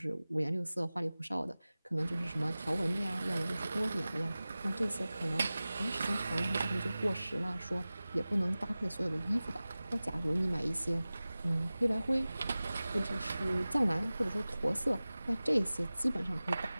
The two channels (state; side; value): inverted; both; correlation -0.97